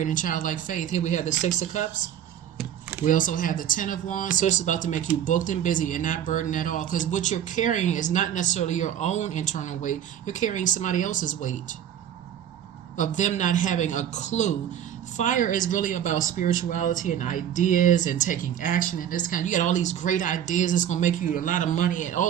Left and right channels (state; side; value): quieter; left; 10.0 dB